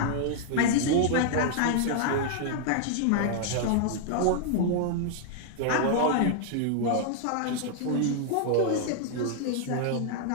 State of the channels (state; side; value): different; both; correlation 0.00